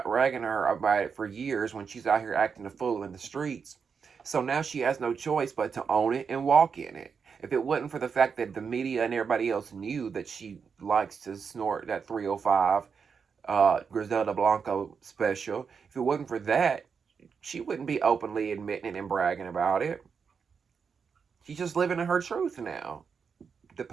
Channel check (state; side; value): quieter; left; 6.0 dB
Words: about it for years when she's out here acting a fool in the streets. So now she has no choice but to own it and walk in it. If it wasn't for the fact that the media and everybody else knew that she likes to snort that 305 Griselda Blanco special, if it wasn't for that, she wouldn't be openly admitting it and bragging about it. She's just living in her truth now. The